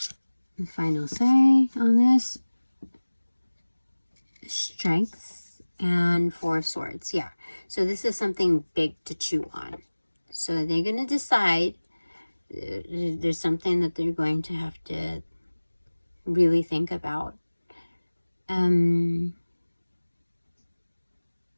The final say on this, strength and 4 of swords. Yeah, so this is something big to chew on. So they're going to decide, there's something that they're going to have to really think about.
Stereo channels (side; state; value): both; inverted; correlation -1.00